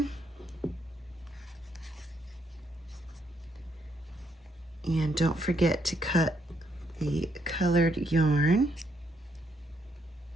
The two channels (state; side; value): normal; both; correlation 0.74